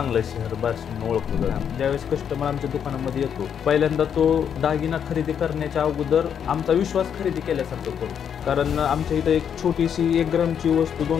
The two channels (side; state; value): right; quieter; 8.1 dB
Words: शहर बार्शी म्हणून ओळखलं जातं. ज्यावेळेस कस्टमर आमच्या दुकानामध्ये येतो, पहिल्यांदा तो दागिना खरेदी करण्याच्या अगोदर आमचा विश्वास खरेदी केल्यासारखं करतो. कारण आमच्या इथं एक छोटीशी 1 ग्रामची वस्तू